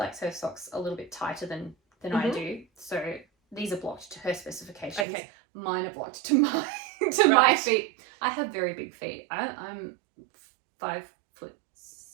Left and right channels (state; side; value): drops out; left; at 5.1 s